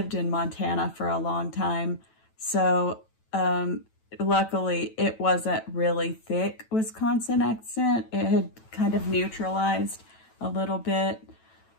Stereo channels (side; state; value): right; late; 9.1 ms